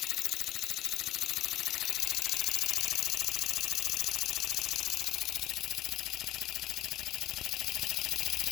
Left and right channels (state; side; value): quieter; right; 15.0 dB